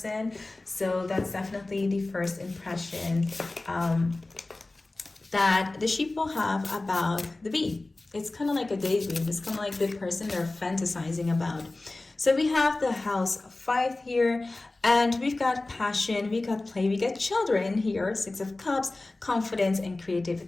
So that's definitely the first impression that the sheep will have about the bee. It's kind of like a daydream. It's kind of like the person they're fantasizing about. So we have the house 5 here, and we've got passion, we got play, we got children here, 6 of Cups, confidence and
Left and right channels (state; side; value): quieter; right; 3.0 dB